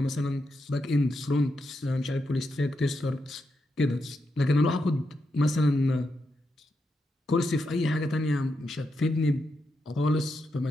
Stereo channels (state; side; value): normal; both; correlation 0.84